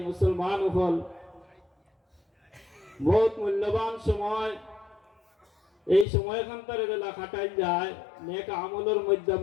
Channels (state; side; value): drops out; right; at 6.1 s